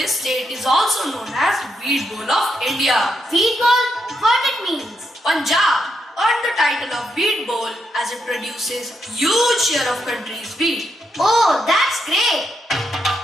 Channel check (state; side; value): normal; both; correlation 0.81